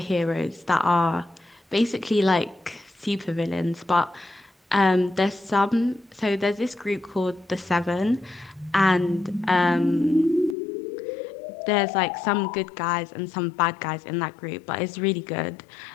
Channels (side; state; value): right; drops out; at 10.6 s